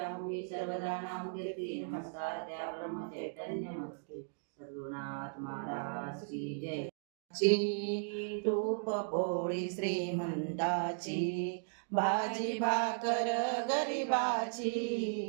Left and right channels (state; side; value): silent; left; digital silence